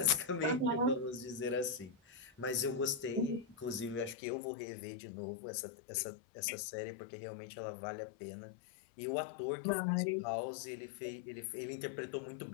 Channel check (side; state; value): right; drops out; at 4.2 s